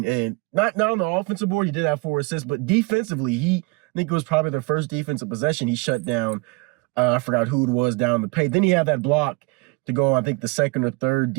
And not on the offensive board, he did have 4 assists, but defensively, I think it was probably their first defensive possession. He shut down, I forgot who it was down the paint. Then he had that block to go, I think, the second or third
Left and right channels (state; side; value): quieter; left; 28.1 dB